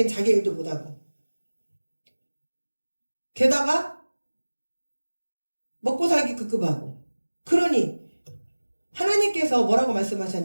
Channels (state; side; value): inverted; both; correlation -1.00